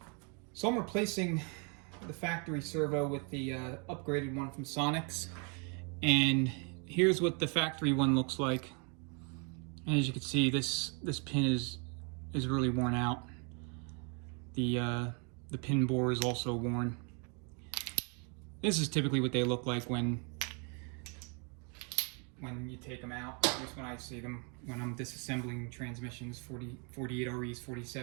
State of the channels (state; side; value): quieter; left; 36.2 dB